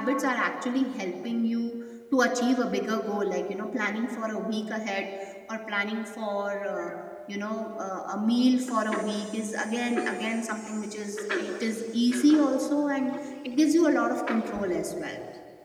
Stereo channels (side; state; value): both; identical; correlation 1.00